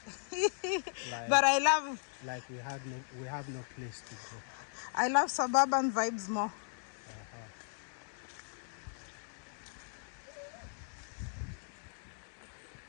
But I love, like we have no place to go. I love suburban vibes more.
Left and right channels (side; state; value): right; silent; digital silence